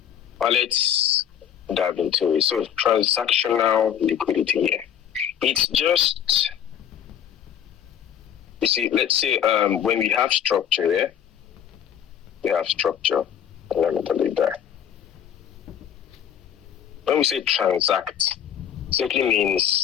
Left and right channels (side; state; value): right; quieter; 9.3 dB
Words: But let's dive into it. So transactional liquidity here. It's just, you see, let's say when we have structure here, we have structure. Let me delete that. When we say transact, simply